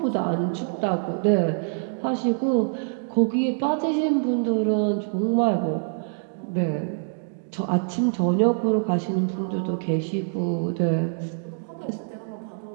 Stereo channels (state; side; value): silent; left; digital silence